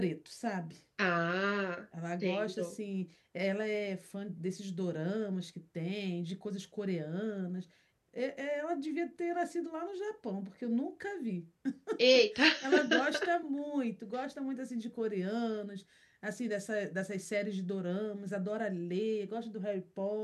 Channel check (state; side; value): identical; both; correlation 1.00